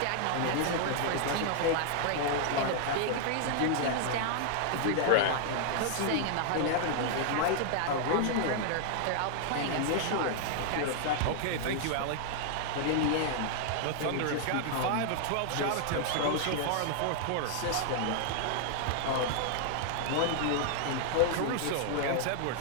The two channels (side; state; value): both; different; correlation 0.00